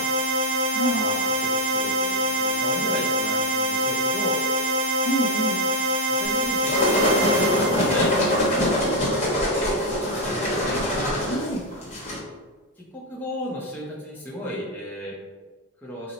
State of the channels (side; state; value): both; normal; correlation 0.00